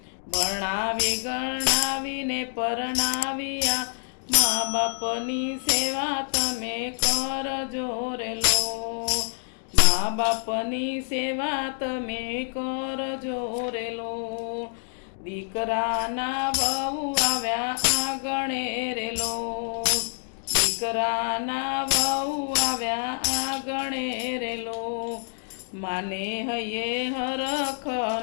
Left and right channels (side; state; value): right; silent; digital silence